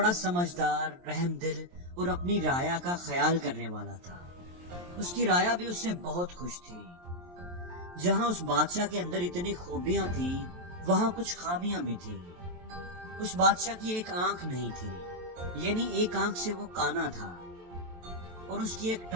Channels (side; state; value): left; late; 23 ms